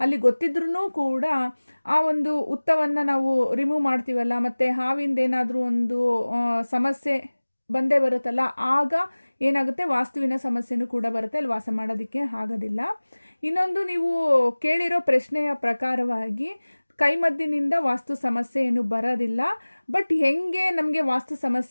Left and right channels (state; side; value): inverted; both; correlation -1.00